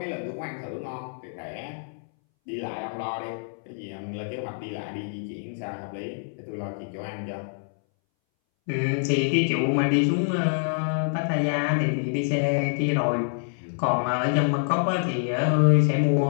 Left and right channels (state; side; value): silent; right; 61 dB below the other